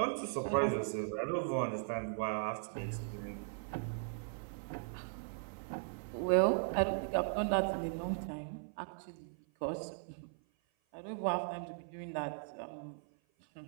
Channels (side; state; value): left; silent; 52 dB below the other